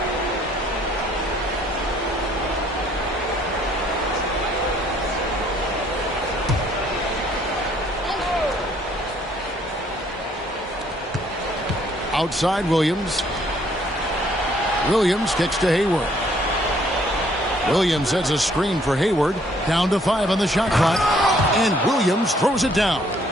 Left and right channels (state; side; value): normal; both; correlation 0.63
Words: Outside Williams. Williams kicks to Hayward. Williams sets a screen for Hayward. Down to 5 on the shot clock. And Williams throws it down.